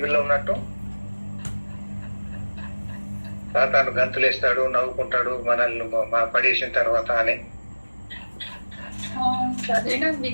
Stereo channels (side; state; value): both; inverted; correlation -1.00